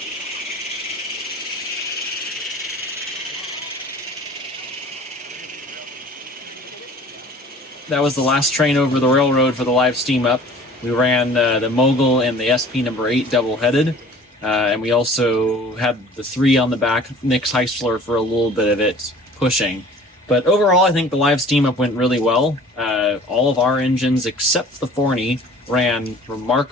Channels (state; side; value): normal; both; correlation 0.47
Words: That was the last train over the railroad for the live steam up. We ran the Mogul and the SP number 8 double-headed. And we also had the 3 on the back, Nick's Heistler for a little bit of it pushing. But overall, I think the live steam up went really well. All of our engines, except the Forney, ran